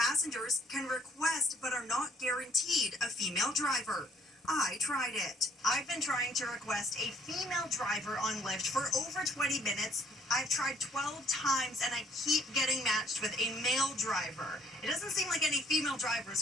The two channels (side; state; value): both; normal; correlation 0.63